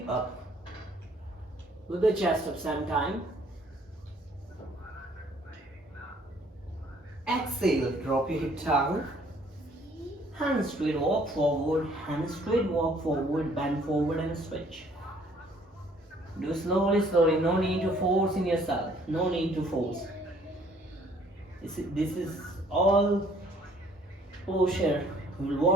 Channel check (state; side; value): normal; both; correlation 0.60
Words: up, lift the chest up same time. Exhale, drop your hip down, hand straight, walk forward, hand straight, walk forward, bend forward and switch. Do slowly, no need to force in yourself, no need to force. This is all posture will